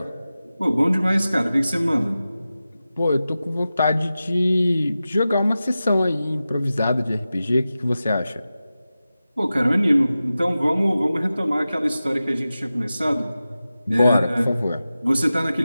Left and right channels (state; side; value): inverted; both; correlation -0.94